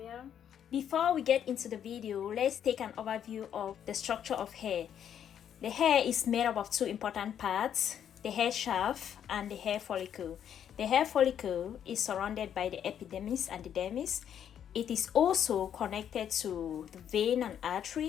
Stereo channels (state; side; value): quieter; right; 9.3 dB